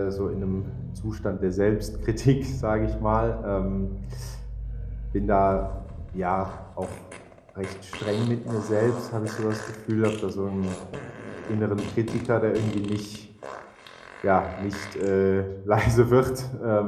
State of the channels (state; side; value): identical; both; correlation 1.00